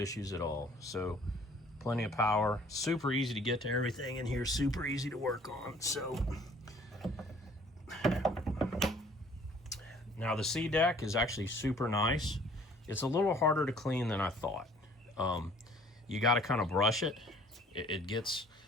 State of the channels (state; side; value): normal; both; correlation 0.55